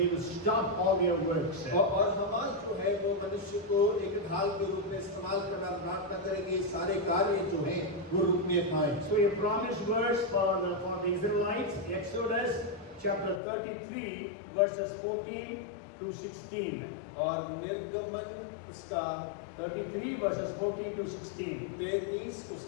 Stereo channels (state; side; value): drops out; right; at 13.4 s